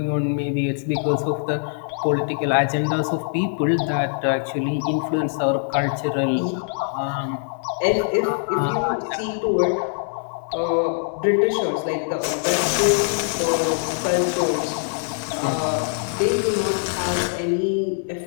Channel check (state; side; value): silent; right; digital silence